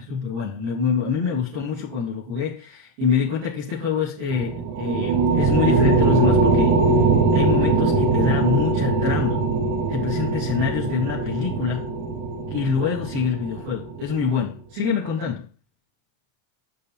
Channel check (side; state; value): left; late; 30 ms